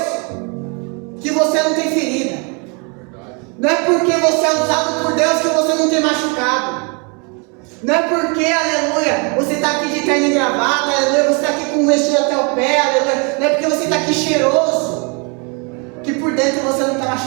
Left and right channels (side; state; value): left; quieter; 33.8 dB